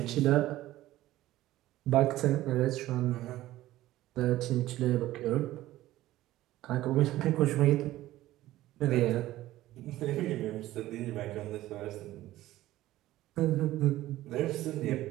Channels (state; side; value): quieter; left; 15.5 dB